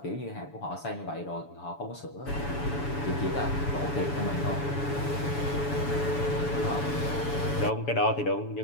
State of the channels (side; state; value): right; late; 7.0 ms